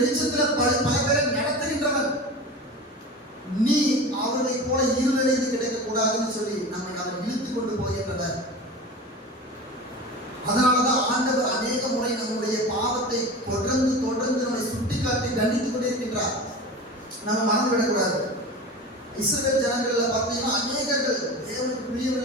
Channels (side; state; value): both; normal; correlation 0.32